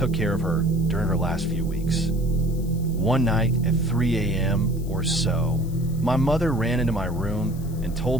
care of her during her last few weeks. One night at 3 a.m. or so, my mother ran into my room and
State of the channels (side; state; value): left; noise; hiss, 22 dB below the sound